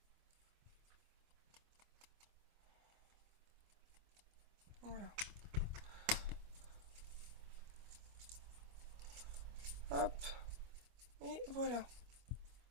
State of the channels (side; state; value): left; late; 25 ms